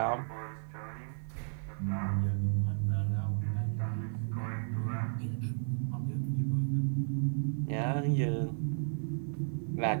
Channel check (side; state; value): left; silent; 55 dB below the other